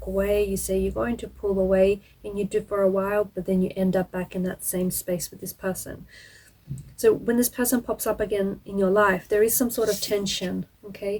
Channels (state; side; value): identical; both; correlation 1.00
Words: away, you say you're going to pull away, and you do for a while, but then you end up back in that same space with this person. So when this person pops up again in your life, there is some sort of tension,